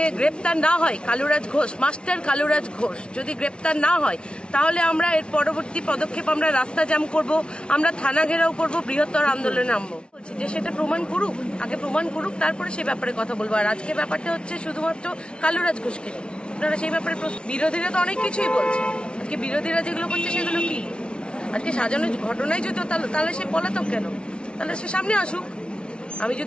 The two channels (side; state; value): right; late; 0.057 ms